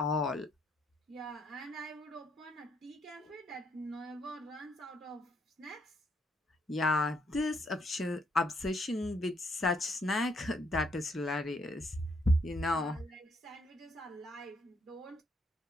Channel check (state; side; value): normal; both; correlation 0.72